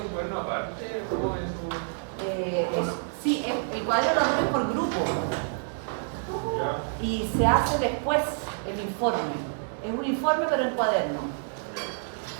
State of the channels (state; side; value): silent; left; digital silence